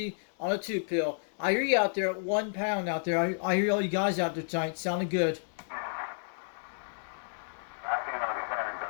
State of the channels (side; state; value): right; silent; digital silence